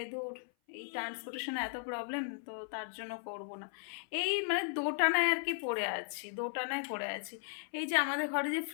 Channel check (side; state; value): right; silent; 53 dB below the other